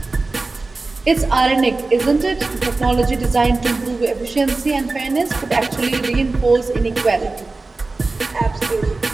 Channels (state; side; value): quieter; left; 3.5 dB